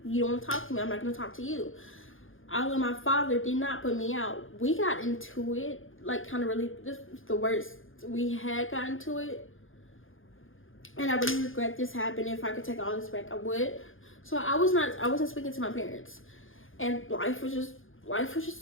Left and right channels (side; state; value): right; late; 0.59 ms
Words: you don't want to talk to me, I'm not going to talk to you. Although my father did not put me out. We got into it, like, kind of really, this was the worst. We had gotten to it, and I really regret this happened. If I could take all this back, I would. So I wasn't speaking to my parents, and life was just